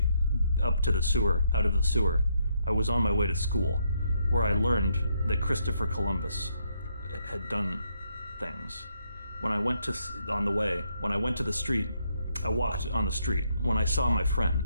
up to the sewer, out of the sewer, I was on my way to school, where I learned that Christopher Columbus had done things. When I went to the street, I walked on the street. When I saw my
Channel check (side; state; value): both; inverted; correlation -0.75